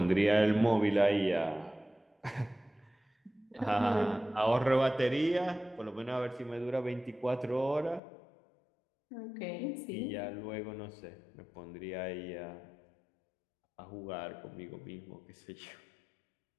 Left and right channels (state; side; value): drops out; right; at 8.0 s